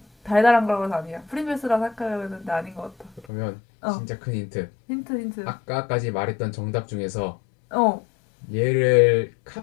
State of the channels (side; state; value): right; drops out; at 3.2 s